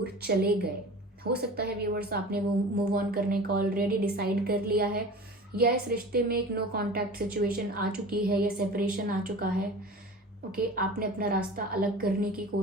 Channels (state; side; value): normal; both; correlation 0.37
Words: चले गए। हो सकता है व्यूअर्स आपने वो मूव ऑन करने का ऑलरेडी डिसाइड कर लिया है, या इस रिश्ते में एक नो कॉन्टैक्ट सिचुएशन आ चुकी है या सेपरेशन आ चुका है, ओके, आपने अपना रास्ता अलग करने की